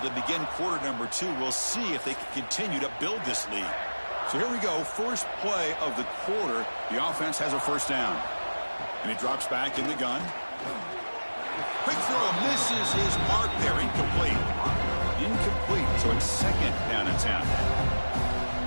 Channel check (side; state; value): both; inverted; correlation -1.00